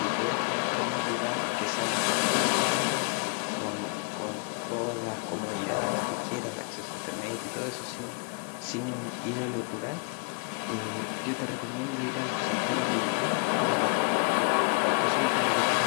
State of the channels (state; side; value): quieter; right; 38.8 dB